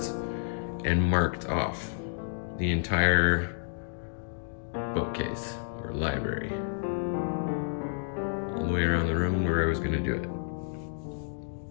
and marked off the entire bookcase or library, all the way around the room where I was gonna do it.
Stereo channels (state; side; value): silent; right; digital silence